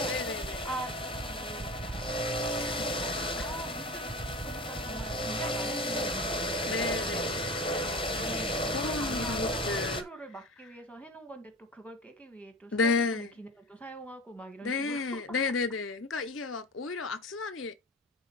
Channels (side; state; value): both; normal; correlation 0.31